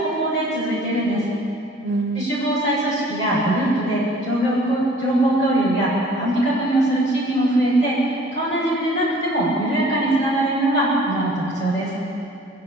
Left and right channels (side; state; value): both; normal; correlation 0.52